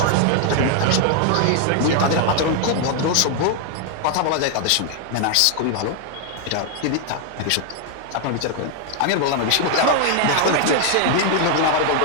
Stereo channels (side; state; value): both; different; correlation 0.00